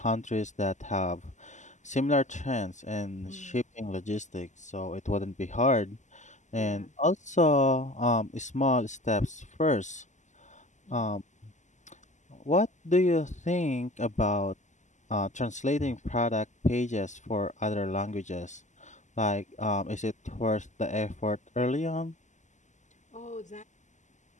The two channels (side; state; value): right; late; 0.34 ms